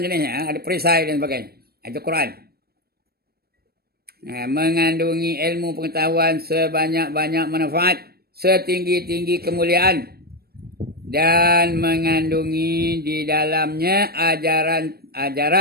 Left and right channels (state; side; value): late; left; 0.45 ms